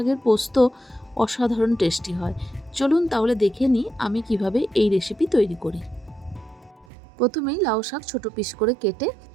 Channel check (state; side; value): drops out; left; at 6.9 s